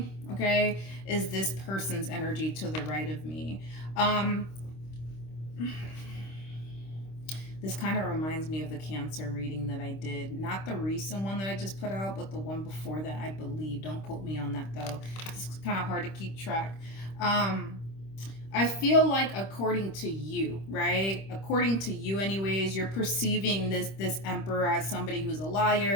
okay, is this person's energy to the right of me. This kind of reminds me of the Cancer reading that I did. Not the recent one that I just put out, but the one before that, I believe. Don't quote me on that, though. It's kind of hard to keep track. I feel like according to you, right? According to you anyways, you're perceiving this Emperor as somebody who's a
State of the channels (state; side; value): late; right; 26 ms